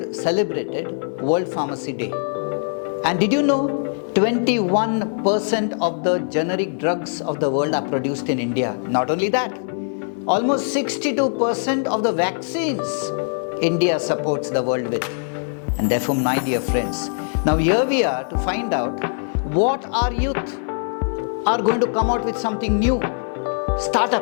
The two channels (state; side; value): silent; right; 57 dB below the other